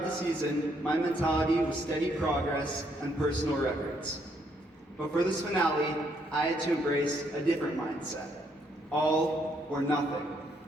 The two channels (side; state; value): both; normal; correlation 0.72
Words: the season, my mentality was steady progress and personal records. But for this finale, I had to embrace a different mindset, all or nothing.